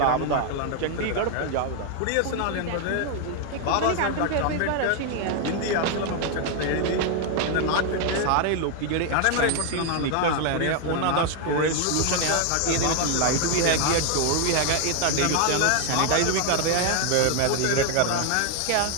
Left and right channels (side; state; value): both; different; correlation 0.00